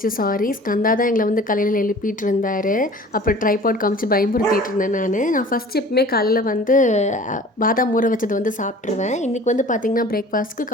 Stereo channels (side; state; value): both; normal; correlation 0.45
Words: சாரி. ஸ்கந்தா தான் எங்களை வந்து காலையில் எழுப்பிட்டு இருந்தார். அப்புறம் ட்ரைபாட் காமிச்சு பயமுறுத்திட்டு இருந்தேன். நான் ஃபஸ்ட் எப்பவுமே காலையில் வந்து பாதாம் ஊற வச்சது வந்து சாப்பிட்ருவேன். இன்றைக்கி வந்து பார்த்திங்கன்னா பிரேக்ஃபாஸ்ட்டுக்கு